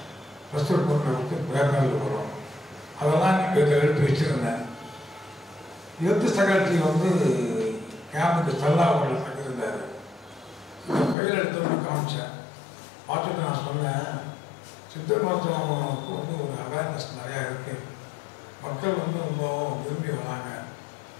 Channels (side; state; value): right; drops out; at 11.2 s